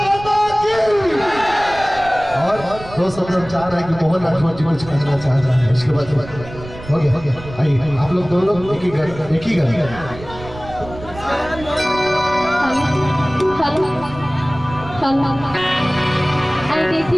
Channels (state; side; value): noise; right; rumble, 15 dB below the sound